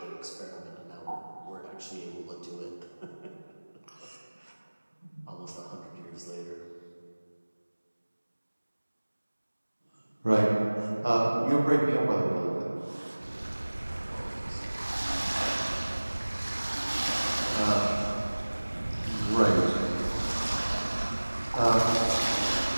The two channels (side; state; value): both; inverted; correlation -1.00